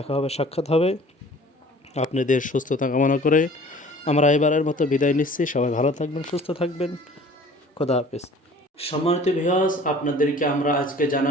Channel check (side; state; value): both; normal; correlation 0.48